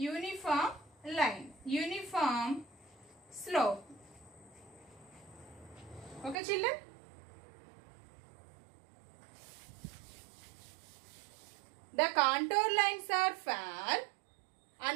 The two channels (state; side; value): drops out; left; at 6.4 s